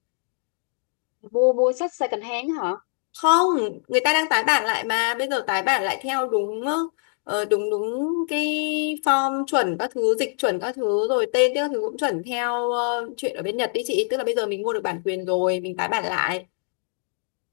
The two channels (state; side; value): silent; right; 62 dB below the other